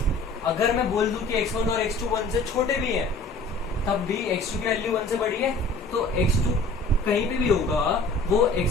अगर मैं बोल दूं कि x1 और x2 1 से छोटे भी हैं, तब भी x2 की वैल्यू 1 से बड़ी है, तो x2 कहीं पे भी होगा वो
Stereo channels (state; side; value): quieter; right; 3.2 dB